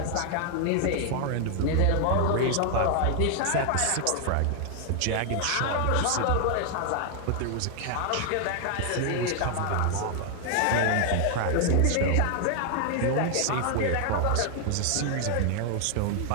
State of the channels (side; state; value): both; different; correlation 0.00